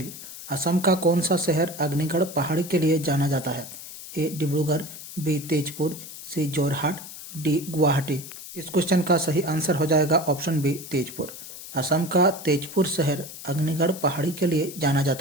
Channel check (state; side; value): noise; left; hiss, 13 dB below the sound